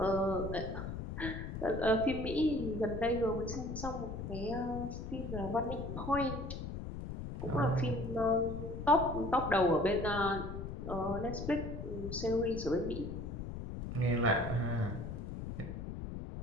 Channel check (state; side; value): noise; left; rumble, 6 dB below the sound